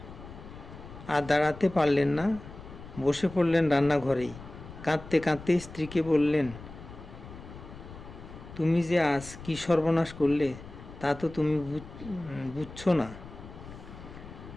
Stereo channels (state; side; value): noise; left; rumble, 15 dB below the sound